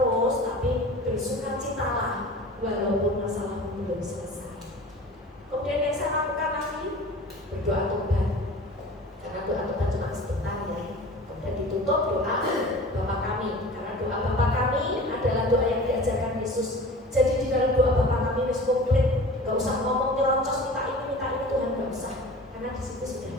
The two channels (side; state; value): both; normal; correlation 0.40